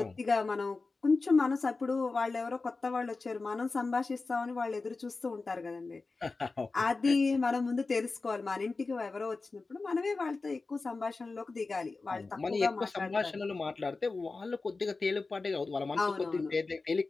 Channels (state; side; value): quieter; right; 3.8 dB